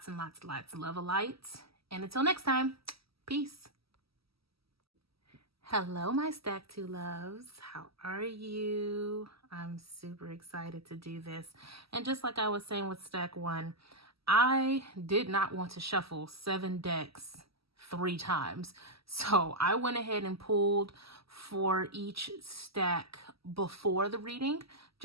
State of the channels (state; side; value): late; left; 0.76 ms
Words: and lots and lots of love and light. And until next time, peace. Hello, my Stack 2 loves. How are you? I'm super excited to do this. And just like I was saying with Stack 1, I did not want to shuffle 7 decks 3 times. So I went ahead and pulled for each stack before the reading,